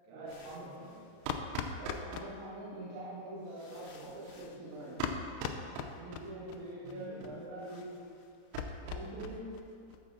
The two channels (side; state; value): left; late; 35 ms